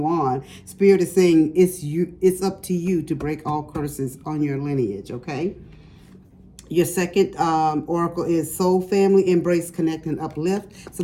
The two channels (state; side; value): identical; both; correlation 1.00